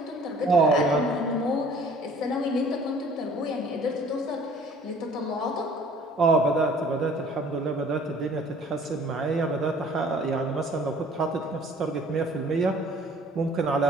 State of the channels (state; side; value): normal; both; correlation 0.53